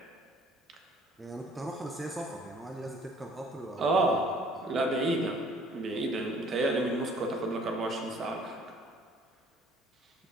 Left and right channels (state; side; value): normal; both; correlation 0.56